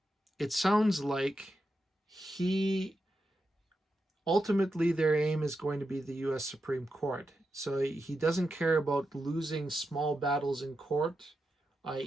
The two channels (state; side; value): normal; both; correlation 0.88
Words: sounds like ultimately their aim is going to be the U.S. Supreme Court. So he doesn't care about losing small battles in court,